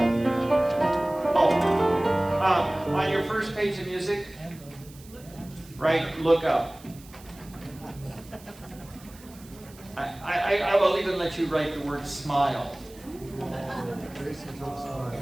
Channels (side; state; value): right; noise; hiss, 22 dB below the sound